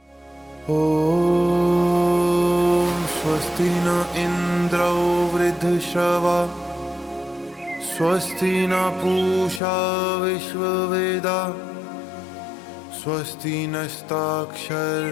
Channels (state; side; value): drops out; right; at 9.6 s